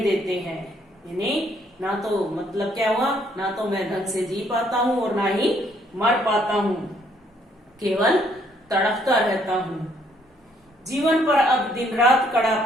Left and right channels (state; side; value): normal; both; correlation 0.67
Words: देते हैं। यानी ना तो मतलब क्या हुआ, ना तो मैं ढंग से जी पाता हूं और ना ही मर पाता हूं, केवल तड़पता रहता हूं। जीवन पर अब दिन रात कड़ा